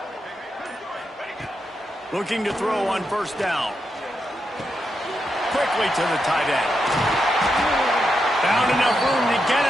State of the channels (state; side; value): normal; both; correlation 0.84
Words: Looking to throw on first down. Quickly to the tight end. Found enough room to get